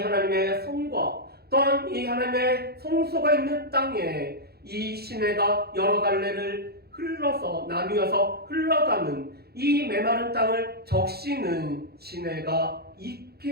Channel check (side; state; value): left; late; 0.46 ms